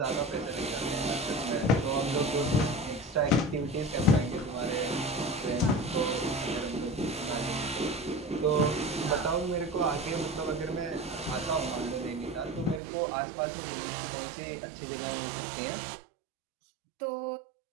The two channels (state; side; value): drops out; left; at 12.8 s